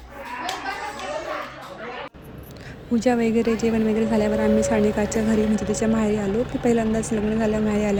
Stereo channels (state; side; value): identical; both; correlation 1.00